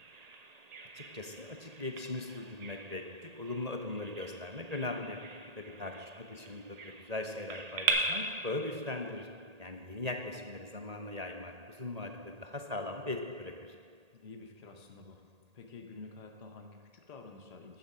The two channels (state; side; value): late; left; 1.8 ms